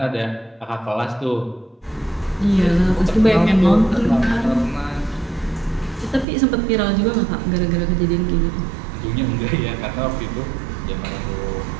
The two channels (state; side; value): drops out; left; at 6.2 s